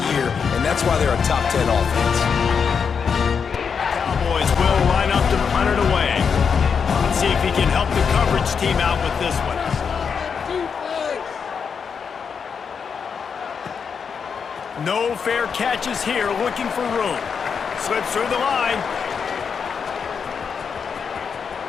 year, and that's why they're a top 10 offense. Cowboys will line up to punt it away. Let's see if he can help the coverage team out with this one. No fair catches here, looking for room. Slips through the line.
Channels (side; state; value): right; quieter; 6.3 dB